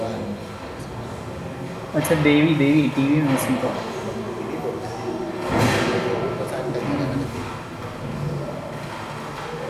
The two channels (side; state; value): both; identical; correlation 1.00